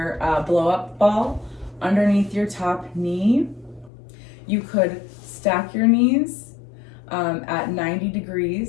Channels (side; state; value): right; drops out; at 3.9 s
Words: blow up ball underneath your top knee. You could stack your knees at 90